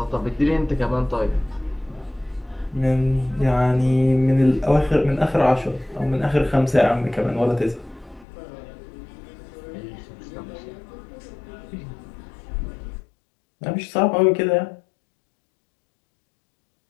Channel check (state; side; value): drops out; right; at 8.2 s